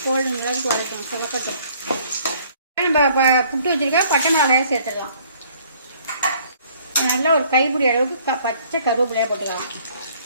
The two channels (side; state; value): both; inverted; correlation -0.59